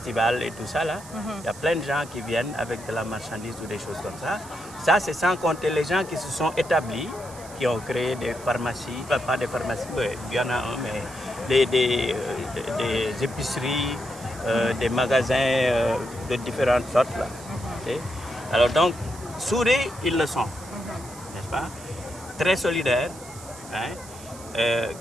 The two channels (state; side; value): noise; right; hiss, 18 dB below the sound